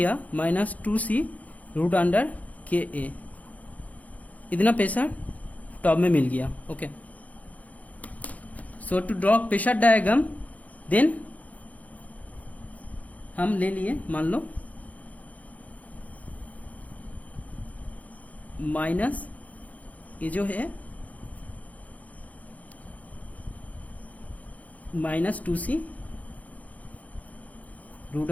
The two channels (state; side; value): late; right; 0.073 ms